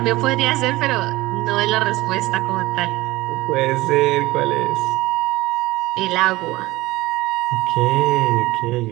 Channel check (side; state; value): left; quieter; 19.2 dB